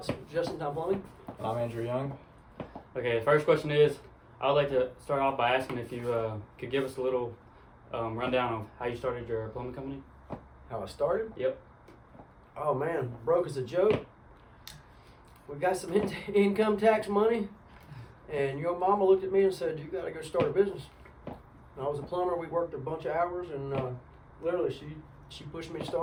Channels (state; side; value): identical; both; correlation 1.00